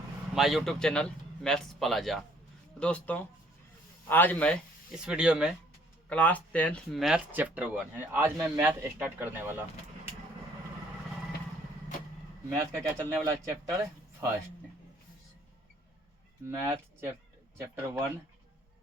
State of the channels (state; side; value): normal; both; correlation 0.61